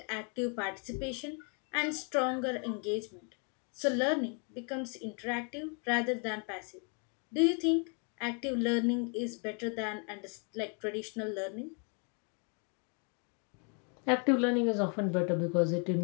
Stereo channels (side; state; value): right; quieter; 38.4 dB